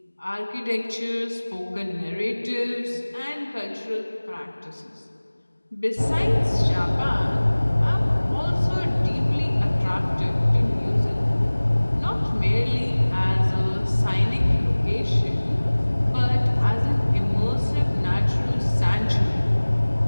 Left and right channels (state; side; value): inverted; both; correlation -1.00